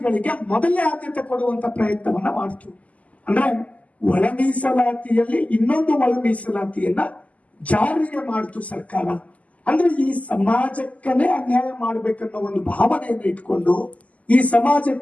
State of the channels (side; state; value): right; late; 0.071 ms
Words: ಮೊದಲೇ ಆದ್ಯತೆ ಕೊಡುವಂತ ಪ್ರಯತ್ನವನ್ನ ಮಾಡ್ತು. ಅಂದ್ರೆ ಒಳ ಮೀಸಲಾತಿಯಲ್ಲಿ ಇನ್ನೊಂದು ಒಳ ಮೀಸಲಾತಿಯನ್ನ ಜಾರಿಗೆ ಮಾಡ್ತು ಸರ್ಕಾರ. ಅಂದ್ರೆ ಈ ಸಮಾಜಕ್ಕನೇ ಅನ್ಯಾಯ ಮಾಡ್ಬೇಕನ್ನೋ ಒಂದು ಭಾವನೆಯನ್ನು ಇಟ್ಕೊಂಡು, ಈ